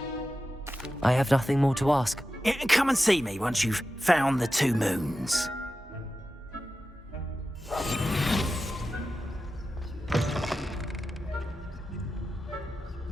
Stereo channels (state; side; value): normal; both; correlation 0.92